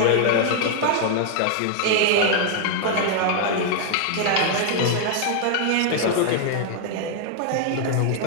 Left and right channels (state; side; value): different; both; correlation 0.00